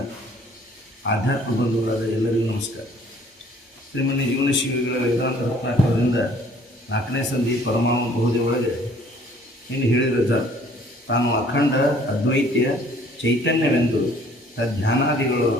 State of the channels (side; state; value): both; normal; correlation 0.57